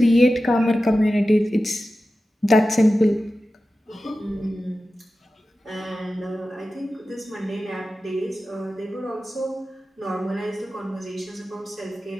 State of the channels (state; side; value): normal; both; correlation 0.94